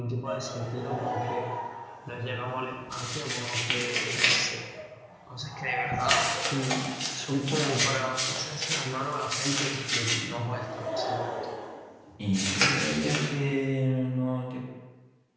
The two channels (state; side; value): identical; both; correlation 1.00